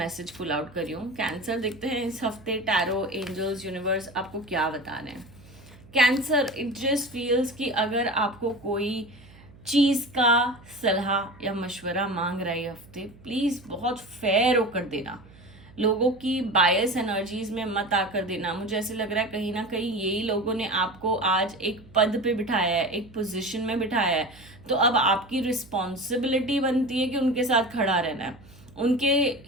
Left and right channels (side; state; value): right; noise; hum, 23 dB below the sound